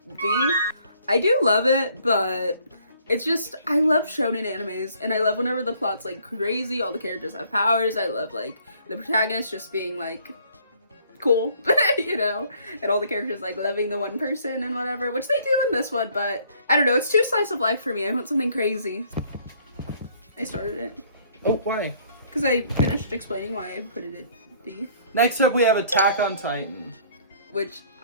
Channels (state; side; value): inverted; both; correlation -0.61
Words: D. I do love it, but it's just, I love shonen animes, and I love whenever the plot's like crazy, all the characters have powers. I love like the protagonist just being like cool, you know, and all the characters like loving the one person and whatever, which they do in this one, but I don't know, it's too slice of life for me. I want something crazy. I started it. Oh, why? Because I finished explaining why I put it at D. Next up, we have Attack on Titan. Which